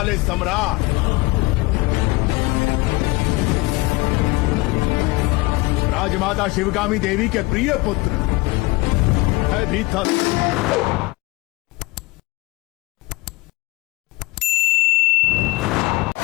सम्राट राजमाता शिवगामी देवी के प्रिय पुत्र है भीतर।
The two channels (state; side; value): quieter; right; 22.6 dB